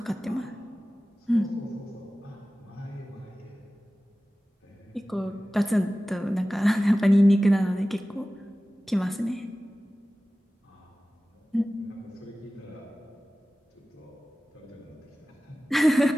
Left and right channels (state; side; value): normal; both; correlation 0.96